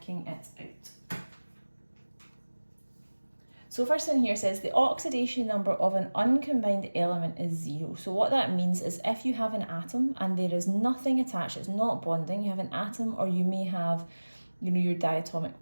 it out. So first thing here says the oxidation number of an uncombined element is 0. So what that means is if you have an atom and there is nothing attached, it's not bonding, you have an atom, or you may have, your diatomic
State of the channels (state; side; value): inverted; both; correlation -1.00